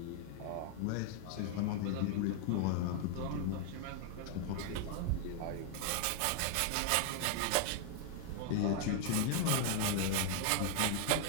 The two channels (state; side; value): different; both; correlation 0.00